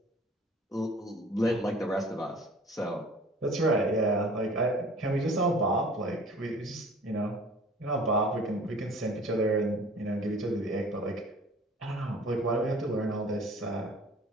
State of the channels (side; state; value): both; normal; correlation 0.47